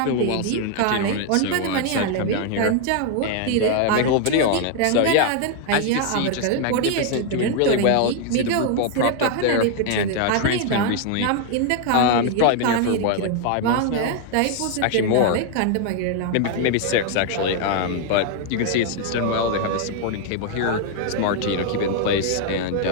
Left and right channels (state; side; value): different; both; correlation 0.00